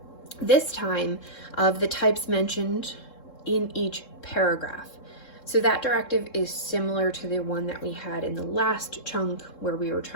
this time of the types mentioned in each paragraph. So that directive is similar to the one that we had in the last chunk where we were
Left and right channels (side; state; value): right; late; 3.7 ms